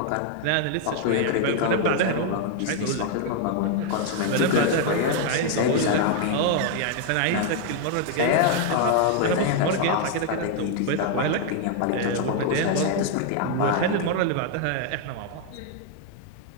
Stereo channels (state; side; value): different; both; correlation 0.00